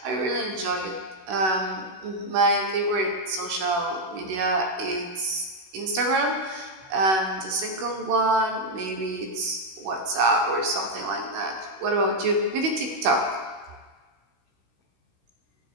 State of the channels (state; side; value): late; left; 16 ms